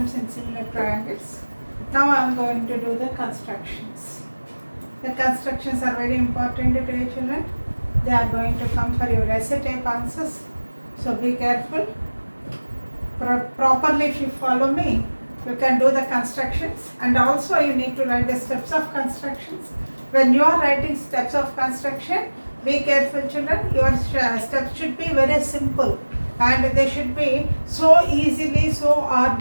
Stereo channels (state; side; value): inverted; both; correlation -1.00